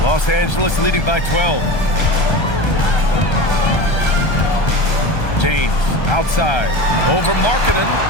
Los Angeles leading by 12. James outside, over Markkanen.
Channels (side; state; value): right; late; 1.3 ms